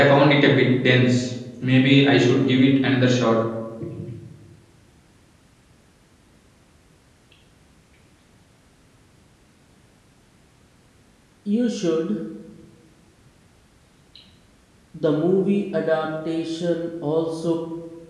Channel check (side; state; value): both; identical; correlation 1.00